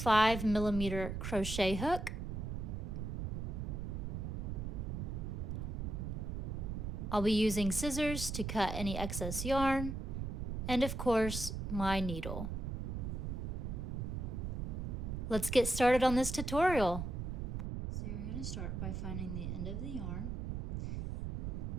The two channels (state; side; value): noise; right; rumble, 3 dB below the sound